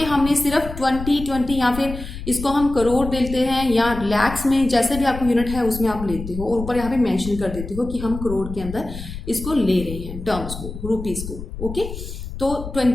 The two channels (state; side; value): noise; left; rumble, 9 dB below the sound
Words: हमने सिर्फ 20 या फिर इसको हम करोड़ लेते हैं या लैक्स में, जैसे भी आपको यूनिट है उसमें आप लेते हो, और ऊपर यहाँ पे मेंशन कर देते हो कि हम करोड़ के अंदर इसको ले रहे हैं, टर्म्स को, रुपीज को, ओके। तो